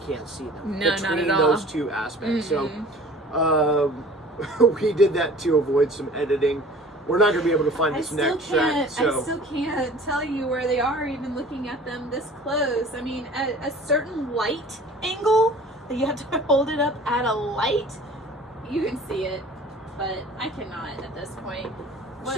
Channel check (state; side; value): normal; both; correlation 0.46